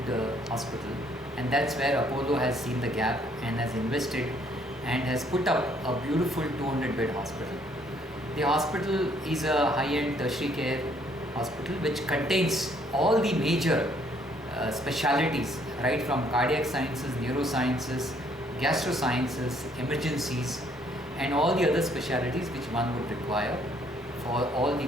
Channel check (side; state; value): both; normal; correlation 0.65